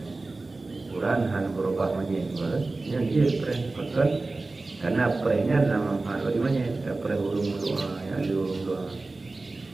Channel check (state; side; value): quieter; left; 3.4 dB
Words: Quran han berubah manyet yang dia preh betul karena prehnya nama hal bagi manyet preh urung doa yang di urung doa